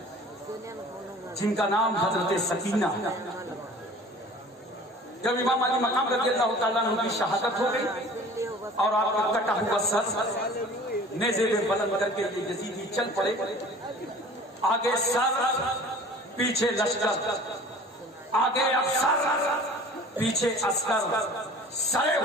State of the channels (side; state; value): both; normal; correlation 0.45